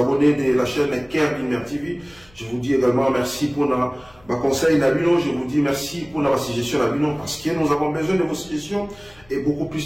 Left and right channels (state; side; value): noise; left; hum, 28 dB below the sound